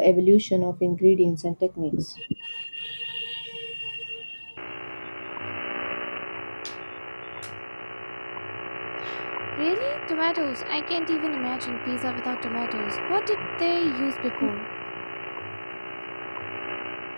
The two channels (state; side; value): inverted; both; correlation -1.00